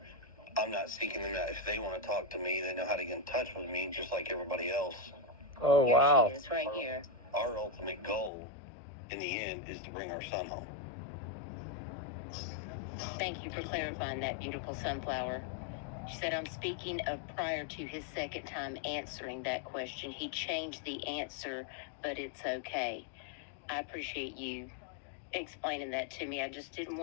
I'm not seeking them out. If they want to talk to me, they know how to get in touch with me, just like everybody else. Oh, wow. Here she is, right here. Our ultimate goal, in the end, is to bring our son home. Thank you for clarifying that, beautiful Sunflower. She said, I'm speaking of prior to his second time answering that question. He changed the answer, but it's okay. I appreciate you explaining that to me. I just didn't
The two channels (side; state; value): right; drops out; at 8.3 s